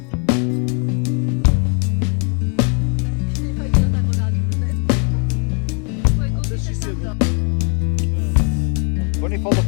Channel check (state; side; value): quieter; right; 37.7 dB